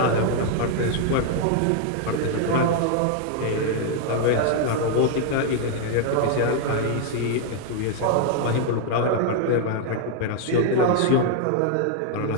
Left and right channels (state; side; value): different; both; correlation 0.00